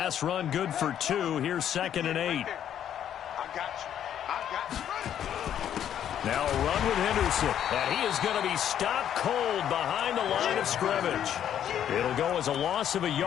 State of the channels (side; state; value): right; quieter; 10.0 dB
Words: run good for 2. Here's 2nd and 8. Now a run with Henderson, and he is going to be stopped cold behind the line of scrimmage. It'll go as a loss of a